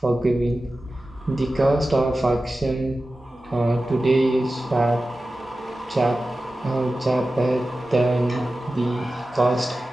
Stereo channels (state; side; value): normal; both; correlation 0.94